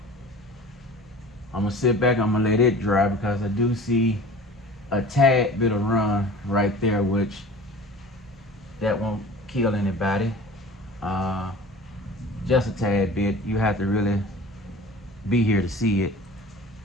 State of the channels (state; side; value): normal; both; correlation 0.41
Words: I'm gonna sit back, I'm gonna let it dry because I do see a tad bit of run right there, which that won't kill anybody. Just a tad bit. You have to really be here to see it.